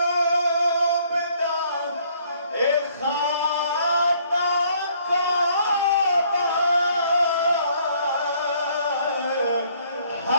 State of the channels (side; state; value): both; inverted; correlation -0.63